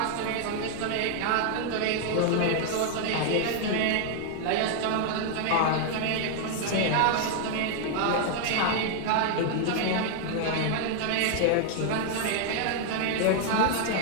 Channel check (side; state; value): both; different; correlation 0.00